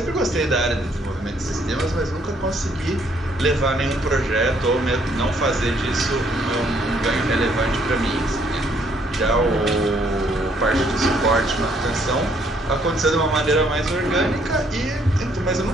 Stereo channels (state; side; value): normal; both; correlation 0.67